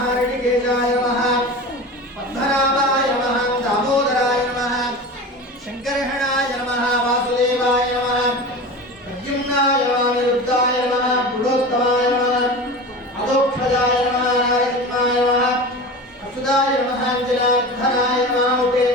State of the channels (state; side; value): normal; both; correlation 0.31